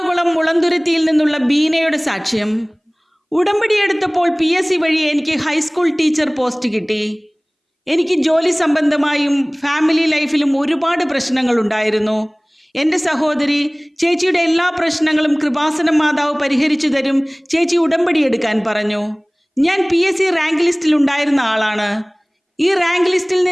മുളന്തുരുത്തിയിൽ നിന്നുള്ള ബീനയുടെ സാക്ഷ്യം. ഉടമ്പടി എടുത്തപ്പോൾ PSC വഴി എനിക്ക് ഹൈസ്കൂൾ ടീച്ചർ പോസ്റ്റ് കിട്ടി. എനിക്ക് ജോലി സംബന്ധമായും ഫാമിലി ലൈഫിലും ഒരുപാട് പ്രശ്നങ്ങളുണ്ടായിരുന്നു. എൻ്റെ സഹോദരി ചേച്ചിയുടെ എല്ലാ പ്രശ്നങ്ങളും കൃപാസനം മാതാവ് പരിഹരിച്ചു തരും, ചേച്ചി ഉടമ്പടി എടുക്കാൻ പറഞ്ഞു. ഞാൻ PSC റാങ്ക് ലിസ്റ്റിൽ ഉണ്ടായിരുന്ന ആളാണ്. ഈ റാങ്ക് ലിസ്റ്റിൽ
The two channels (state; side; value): identical; both; correlation 1.00